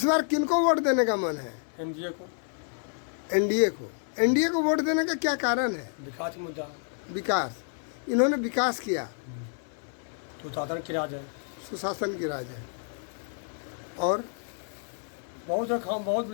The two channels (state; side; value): silent; right; 57 dB below the other